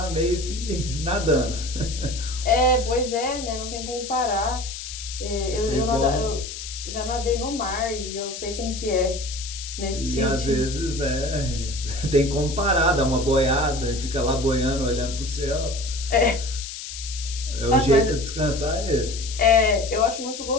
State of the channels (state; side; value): noise; left; hiss, 9 dB below the sound